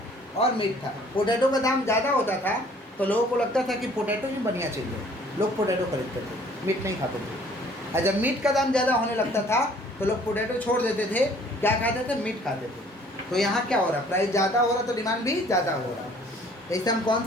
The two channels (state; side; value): normal; both; correlation 0.56